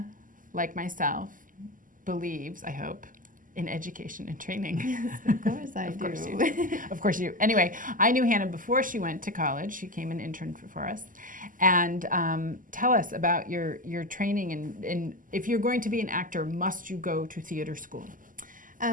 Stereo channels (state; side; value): late; left; 0.39 ms